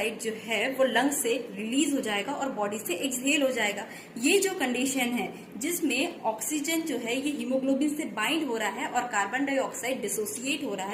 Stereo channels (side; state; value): both; identical; correlation 1.00